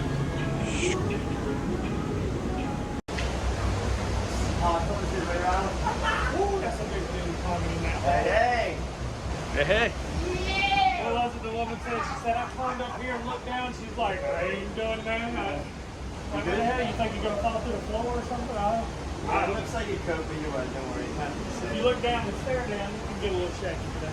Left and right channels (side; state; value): both; identical; correlation 1.00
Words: Hey, hey. Well, that's what the woman said. She said, I climbed up here and looked down. She's like, I ain't doing that. Like, what the hell? You think you're going to fall through the floor or something? It looks like you could, but you won't. Don't worry. If you look down and stare down, you can get a little shaky, but